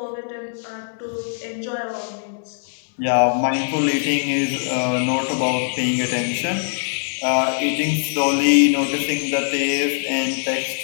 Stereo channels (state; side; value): silent; right; digital silence